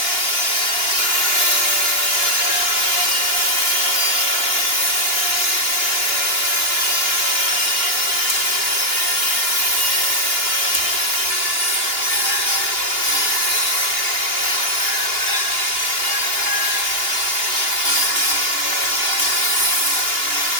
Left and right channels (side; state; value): right; late; 2.9 ms